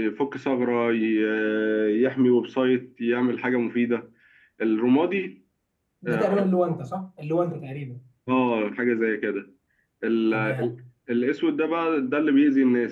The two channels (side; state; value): both; identical; correlation 1.00